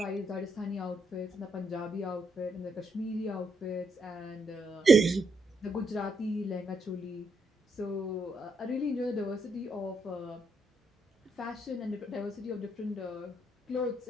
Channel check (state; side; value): normal; both; correlation 0.78